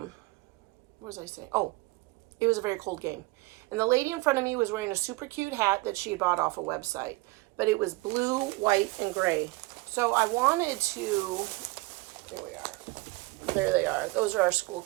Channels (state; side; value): quieter; left; 22.5 dB